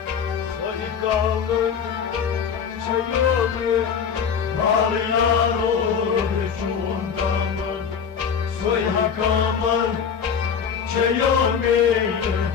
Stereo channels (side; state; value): right; quieter; 7.0 dB